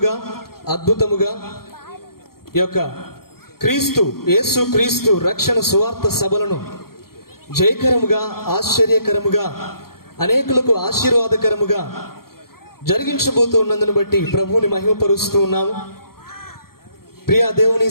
అద్భుతముగా ఈ యొక్క యేసు క్రీస్తు రక్షణ సువార్త సభలను జయకరముగా ఆశ్చర్యకరముగా అనేకులకు ఆశీర్వాదకరముగా జరిగించబోతూ ఉన్నందును బట్టి ప్రభువుని మహిమపరుస్తూ ఉన్నాము. ప్రియ దేవుని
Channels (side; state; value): right; late; 0.93 ms